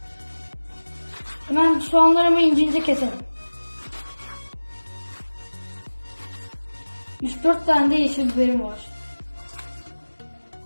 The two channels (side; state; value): both; inverted; correlation -1.00